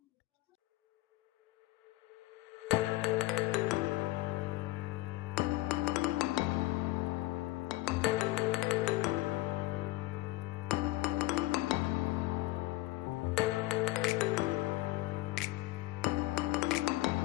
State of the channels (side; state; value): right; quieter; 18.7 dB